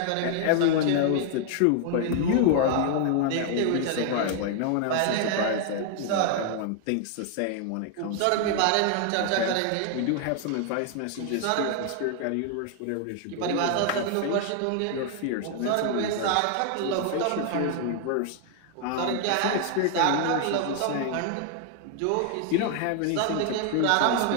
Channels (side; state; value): both; different; correlation 0.00